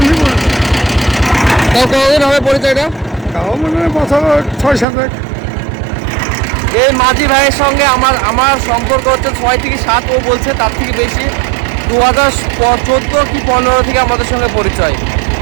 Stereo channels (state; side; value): drops out; left; at 4.9 s